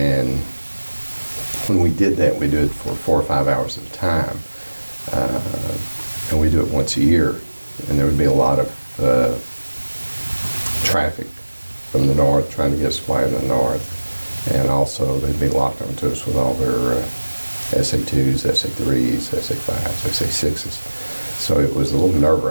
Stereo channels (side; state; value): both; inverted; correlation -1.00